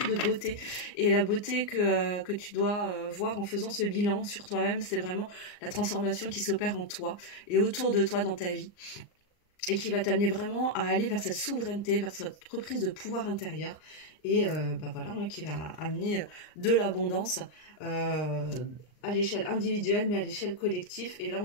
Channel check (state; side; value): late; right; 39 ms